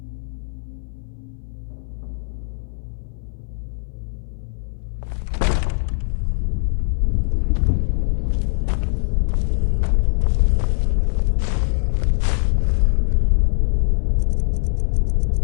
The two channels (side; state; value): right; silent; 60 dB below the other